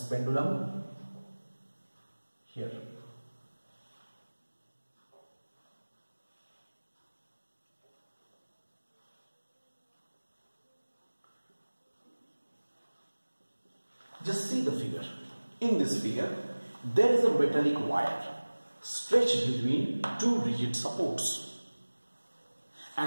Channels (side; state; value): both; inverted; correlation -1.00